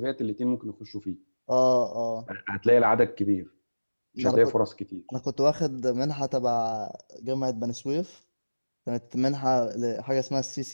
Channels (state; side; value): inverted; both; correlation -1.00